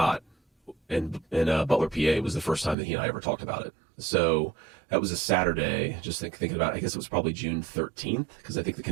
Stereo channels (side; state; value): left; drops out; at 2.8 s